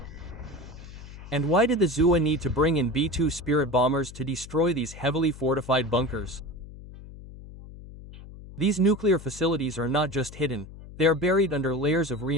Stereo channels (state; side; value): noise; left; hum, 16 dB below the sound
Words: And why did the ZUA need to bring in B-2 Spirit bombers to destroy these heavily fortified bunkers? These nuclear facilities are not just hidden, they are buried under layers of